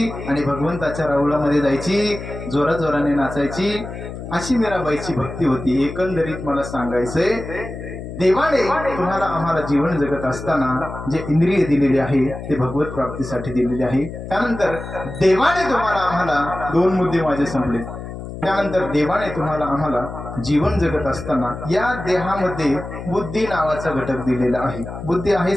आणि भगवंताच्या राऊळामध्ये जायची, जोराजोराने नाचायची. अशी मीराबाईची भक्ती होती. एकंदरीत मला सांगायचंय, देवाने तुम्हाला आम्हाला जीवन जगत असताना जे इंद्रिय दिलेले आहे ते भगवत प्राप्तीसाठी दिलेले आहे. त्यानंतर देवाने तुम्हाला आम्हाला 2 मुद्दे माझे संपले. त्यानंतर देवाने तुम्हाला आम्हाला जीवन जगत असताना या देहामध्ये बुद्धी नावाचा घटक दिलेला आहे. बुद्धी आहे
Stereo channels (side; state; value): left; noise; hum, 10 dB below the sound